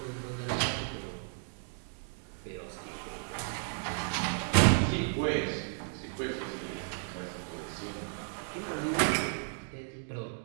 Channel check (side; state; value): left; silent; 55 dB below the other